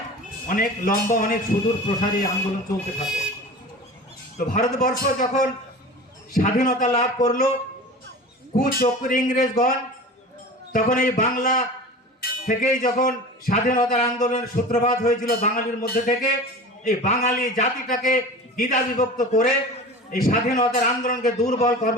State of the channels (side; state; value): both; normal; correlation 0.35